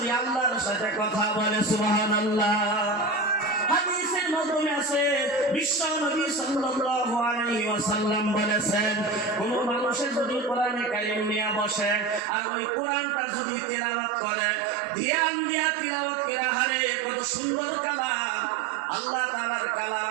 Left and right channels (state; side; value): drops out; left; at 12.2 s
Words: আল্লাহর সাথে কথা বলে। সুবহানাল্লাহ। হাদিসের মাধ্যমে আছে, বিশ্ব নবী সাল্লাল্লাহু আলাইহি ওয়াসাল্লাম বলেছেন, কোন মানুষের যদি কোরআনে কারীম নিয়ে বসে আর ওই কোরআনটা যদি তিলাওয়াত করে, ধ্যান দিয়া তিলাওয়াত করে, হারে কত সুন্দর কালাম, আল্লাহ তাআলার